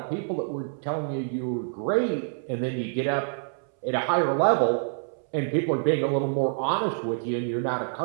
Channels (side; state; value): left; silent; 60 dB below the other